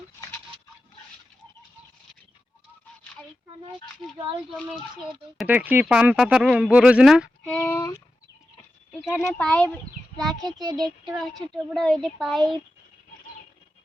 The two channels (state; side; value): normal; both; correlation 0.91